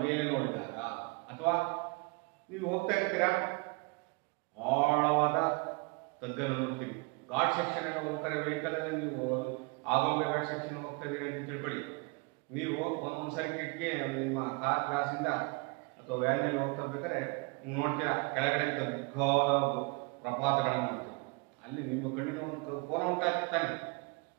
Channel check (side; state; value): left; quieter; 30.1 dB